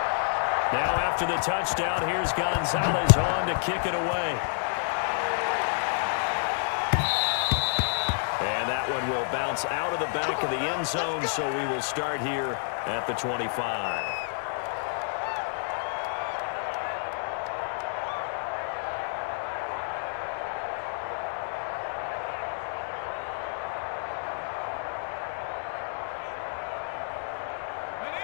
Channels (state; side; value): silent; right; digital silence